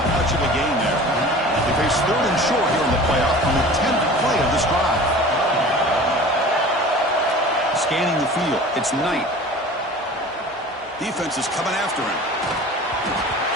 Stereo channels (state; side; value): normal; both; correlation 0.41